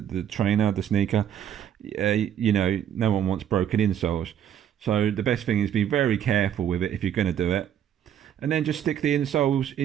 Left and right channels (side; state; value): left; quieter; 9.8 dB